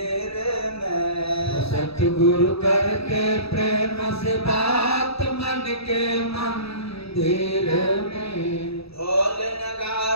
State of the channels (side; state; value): right; late; 0.77 ms